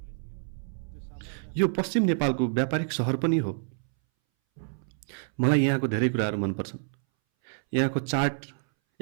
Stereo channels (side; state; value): left; silent; 59 dB below the other